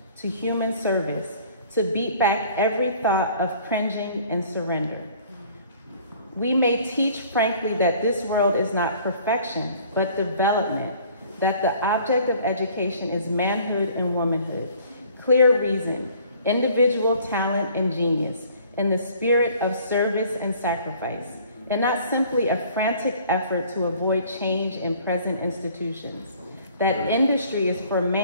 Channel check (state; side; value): inverted; both; correlation -0.53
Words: to human service, to beat back every thought of cringing and surrender. We may teach frankly that this world is not perfection, but development, that the object of education is manhood and womanhood, clear reason, individual talent and genius, in the spirit of service and sacrifice, and not simply a frantic effort to avoid change in present institutions. That industry is for